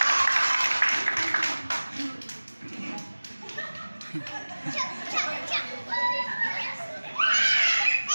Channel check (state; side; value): inverted; both; correlation -1.00